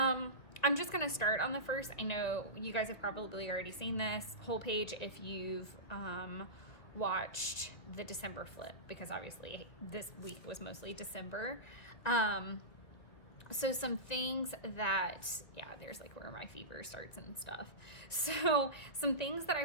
just gonna start on the 1st. I know you guys have probably already seen this whole page if you've watched the December flip, because obviously this week was mostly December. So some things that, yeah, there's like where my fever starts and stuff. So some things that I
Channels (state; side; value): late; right; 2.3 ms